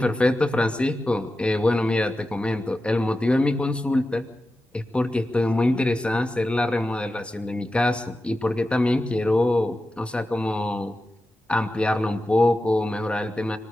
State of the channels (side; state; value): both; normal; correlation 0.92